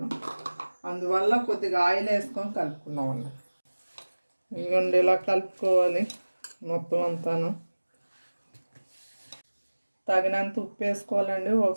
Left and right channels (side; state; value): both; inverted; correlation -1.00